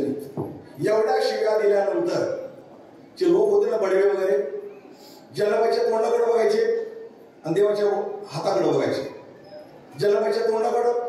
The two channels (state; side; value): identical; both; correlation 1.00